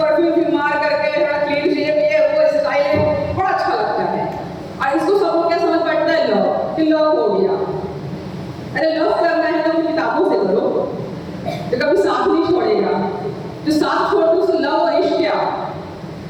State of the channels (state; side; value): identical; both; correlation 1.00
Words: मार करके थोड़ा क्लीन शेव, ये वो स्टाइल है, बड़ा अच्छा लगता है। और इसको सब लोग क्या समझ बैठता है? लव, कि लव हो गया। अरे लव करना है तो किताबों से करो, तो कभी साथ नहीं छोड़ेगा। जो साथ छोड़ दो उससे लव और इश्क क्या